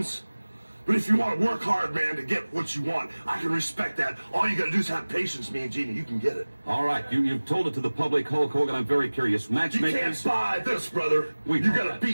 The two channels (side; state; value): both; inverted; correlation -1.00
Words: But if you want to work hard, man, to get what you want, I can respect that. All you got to do is have patience, me and Genie. You can get it. All right, you've told it to the public, Hulk Hogan. I'm very curious. You Matchmakers, can't buy this, brother. We You know got to that.